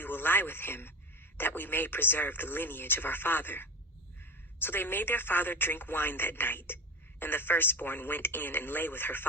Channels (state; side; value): normal; both; correlation 0.25